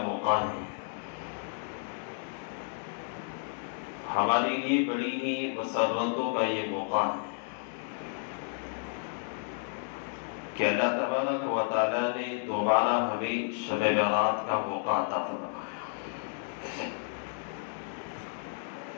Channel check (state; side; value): silent; right; 57 dB below the other